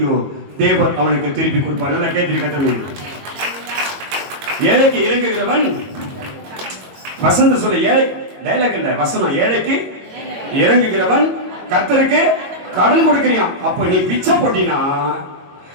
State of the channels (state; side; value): late; left; 22 ms